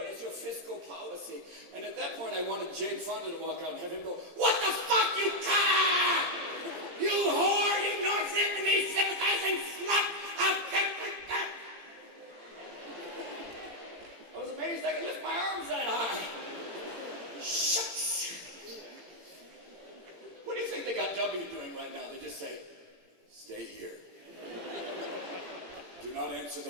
is your fiscal policy? And at that point, I wanted Jane Fonda to walk out and have him go, "What the fuck, you cock! You whore! You North Vietnamese sympathizing slut! I was amazed I could lift my arms that high. Shucks! What do you think they got W doing right now? They just say, "Stay here. Do not answer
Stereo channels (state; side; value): late; left; 17 ms